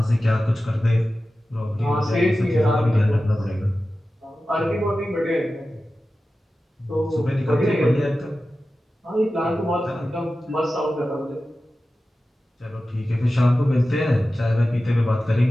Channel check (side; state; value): both; normal; correlation 0.94